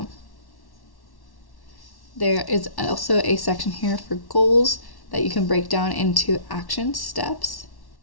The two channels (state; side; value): late; right; 1.1 ms